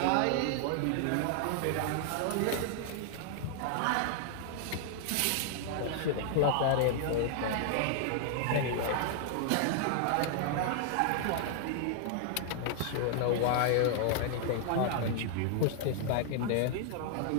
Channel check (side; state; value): both; different; correlation 0.00